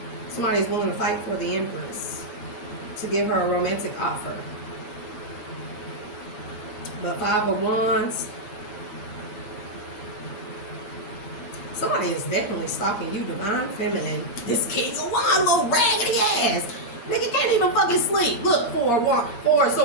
Somebody's willing to fight for the Empress to give her a romantic offer. But 5 of Wands. Somebody is definitely stalking you, divine feminine. This King of Wands, little raggedy ass. Nigga can't even fucking sleep. Look, 4 of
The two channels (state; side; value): late; right; 8.5 ms